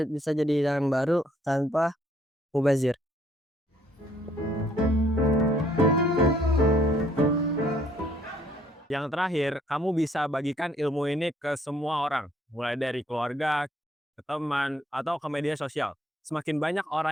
bisa jadi hidangan baru tanpa mubazir. Yang terakhir, kamu bisa bagikan ilmu ini ke semua orang, mulai dari keluarga, ke teman, atau ke media sosial. Semakin banyak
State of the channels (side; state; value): both; normal; correlation 0.65